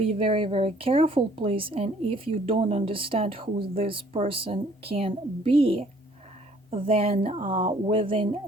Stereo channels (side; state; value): both; normal; correlation 0.59